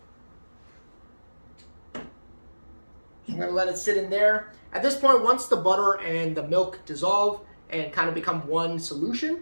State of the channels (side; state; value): both; inverted; correlation -1.00